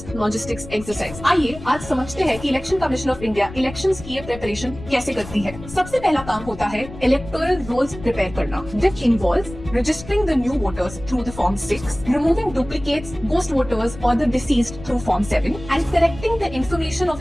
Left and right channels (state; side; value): noise; left; rumble, 14 dB below the sound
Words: logistics exercise. आइए आज समझते हैं कि election commission of India elections की ये preparation कैसे करती है। सबसे पहला काम होता है इलेक्टोरल रोल्स प्रिपेयर करना, which involves registering the new voters through the Form 6, removing duplicates, ghost voters or the deceased through Form 7, and correcting the information